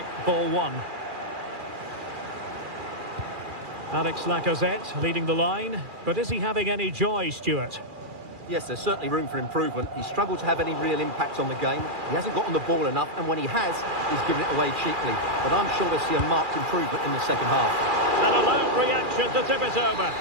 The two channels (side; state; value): left; late; 2.4 ms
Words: Ball one. Alex Lacazette leading the line, but is he having any joy, Stuart? Yes, there's certainly room for improvement. He's struggled to have any real impact on the game. He hasn't got on the ball enough, and when he has, he's given it away cheaply. But I'm sure we'll see a marked improvement in the second half. An alert reaction to tip it over.